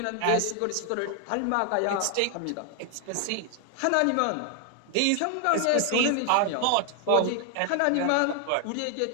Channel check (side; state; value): both; different; correlation 0.00